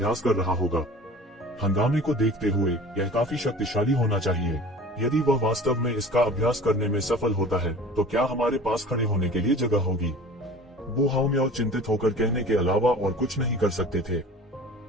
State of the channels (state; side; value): normal; both; correlation 0.42